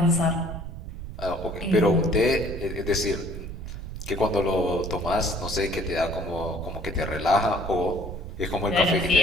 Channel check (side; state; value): right; noise; rumble, 9 dB below the sound